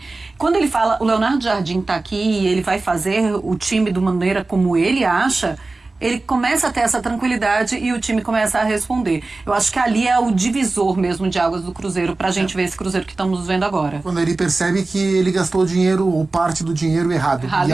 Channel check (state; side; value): quieter; left; 3.4 dB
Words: Quando ele fala, o Leonardo Jardim está aqui e ele vai fazer o time de maneira como ele acha, ele começa a ter essa tranquilidade e o time começa a responder. Eu acho que ali é o divisor mesmo de águas do Cruzeiro, pra gente ver esse Cruzeiro que estamos vendo agora. Quando ele percebe que ele gastou o dinheiro ou parte do dinheiro errado. E